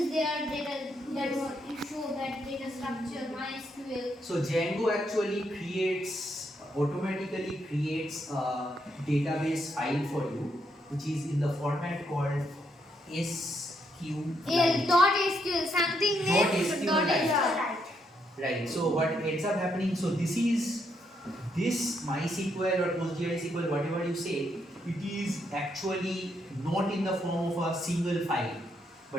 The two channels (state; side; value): normal; both; correlation 0.76